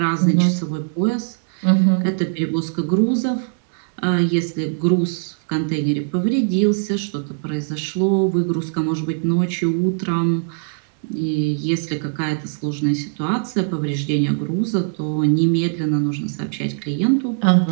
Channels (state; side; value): silent; left; digital silence